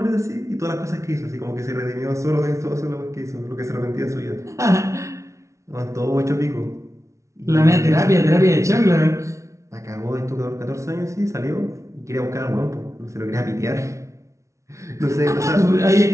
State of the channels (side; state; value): left; late; 0.14 ms